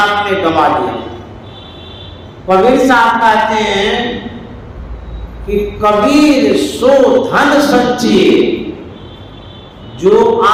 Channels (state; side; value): identical; both; correlation 1.00